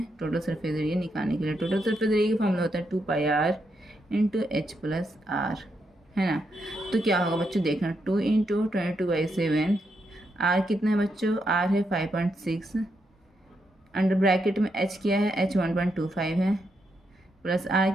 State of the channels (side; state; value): both; normal; correlation 0.81